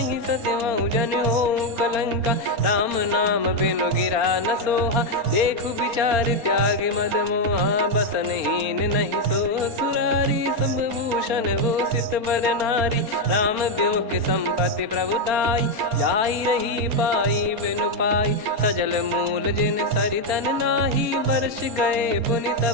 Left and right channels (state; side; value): late; left; 4.4 ms